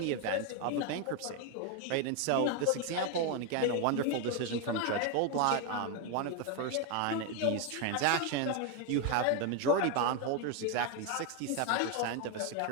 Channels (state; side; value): different; both; correlation 0.01